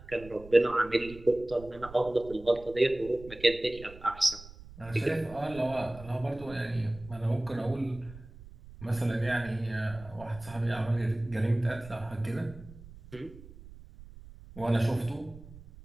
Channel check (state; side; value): noise; right; rumble, 18 dB below the sound